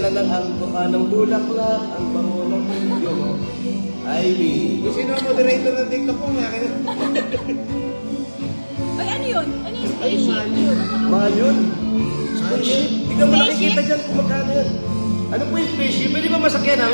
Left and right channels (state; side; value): inverted; both; correlation -1.00